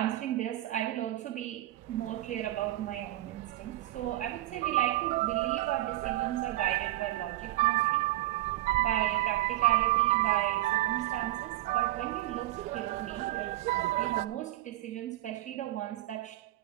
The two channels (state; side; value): quieter; left; 16.1 dB